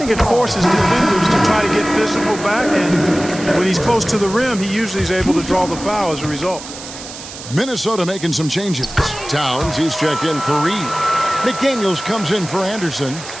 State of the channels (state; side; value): noise; right; hiss, 13 dB below the sound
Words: it forces defenders to try to get physical back, and when he's close to the rim, he usually is able to draw the foul as a result. Minnesota making some changes. Towns, he's checked in for Reed. McDaniels comes in for Anderson,